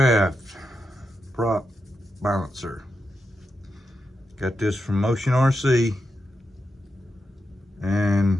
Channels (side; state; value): both; normal; correlation 0.87